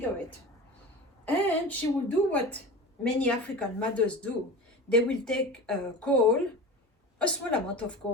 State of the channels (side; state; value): both; normal; correlation 0.32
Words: And she will do what many African mothers do. They will take coal, a small amount of